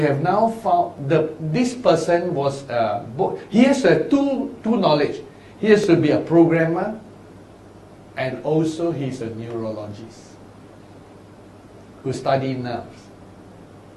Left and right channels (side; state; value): both; identical; correlation 1.00